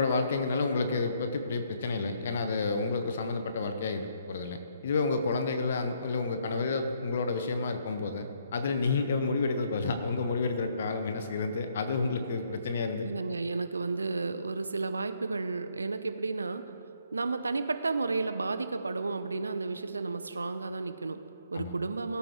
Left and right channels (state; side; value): inverted; both; correlation -0.71